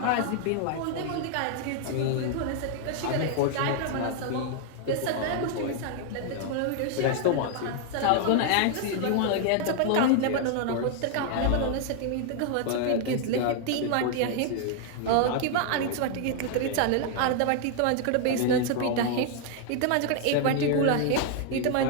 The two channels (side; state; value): both; different; correlation 0.00